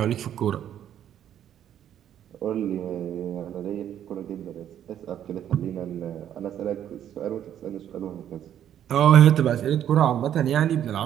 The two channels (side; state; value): left; quieter; 10.4 dB